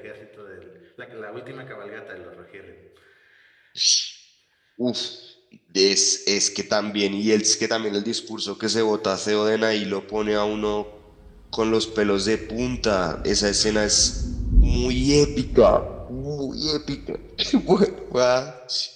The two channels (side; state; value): both; identical; correlation 1.00